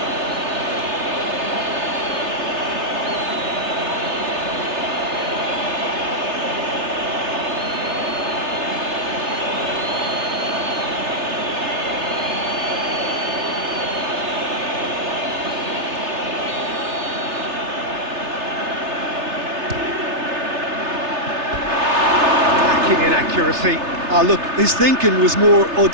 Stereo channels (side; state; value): left; late; 3.3 ms